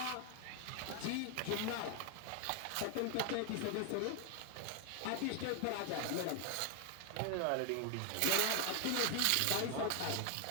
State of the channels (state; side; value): different; both; correlation 0.00